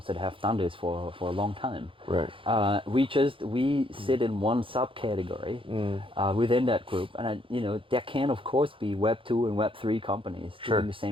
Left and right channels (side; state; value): left; late; 0.25 ms